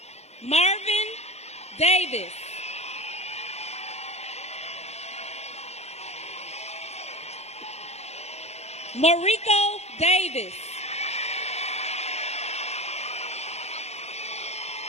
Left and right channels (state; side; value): late; right; 0.31 ms